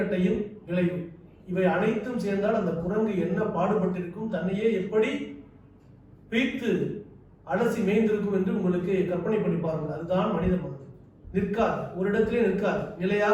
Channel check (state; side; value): identical; both; correlation 1.00